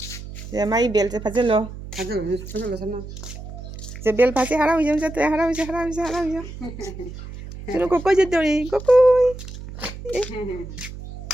Ya mai bel se phajalo. Phajalo sama. Se bel phase harau jam jat harau. Chunu kokoi jat dori, kokoi.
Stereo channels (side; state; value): right; noise; hum, 12 dB below the sound